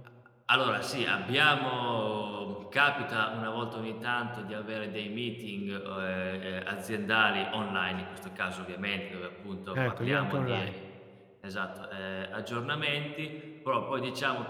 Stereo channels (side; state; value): both; identical; correlation 1.00